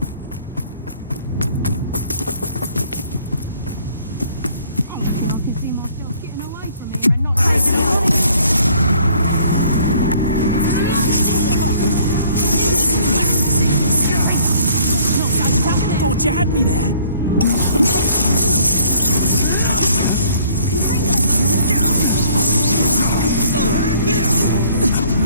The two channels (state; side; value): inverted; both; correlation -0.58